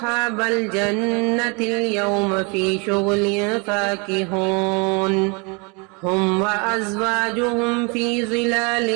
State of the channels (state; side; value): quieter; left; 31.5 dB